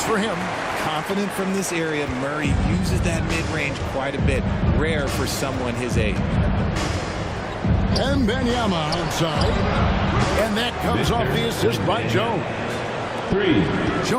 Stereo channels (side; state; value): both; identical; correlation 1.00